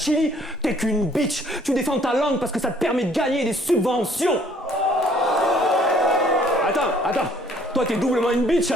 t'es qu'une bitch. Tu défends ta langue parce que ça te permet de gagner des subventions. Attends. Toi, t'es doublement une bitch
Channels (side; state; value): both; normal; correlation 0.60